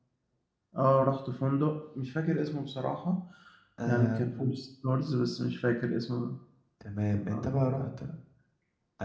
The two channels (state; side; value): identical; both; correlation 1.00